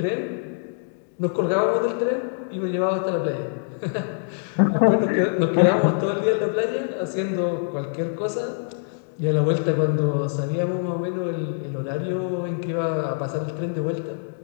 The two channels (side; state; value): right; silent; 62 dB below the other